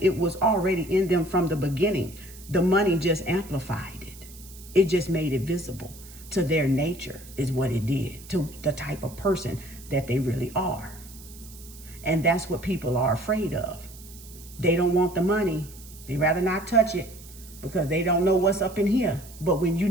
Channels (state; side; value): noise; right; hiss, 19 dB below the sound